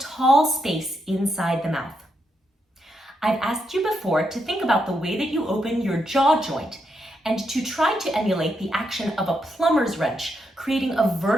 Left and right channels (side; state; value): both; normal; correlation 0.81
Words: space inside the mouth. I've asked you before to think about the way that you open your jaw joint and to try to emulate the action of a plumber's wrench, creating a